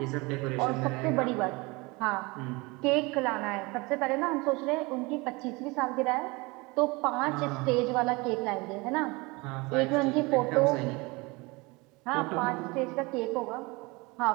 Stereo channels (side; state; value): left; quieter; 25.2 dB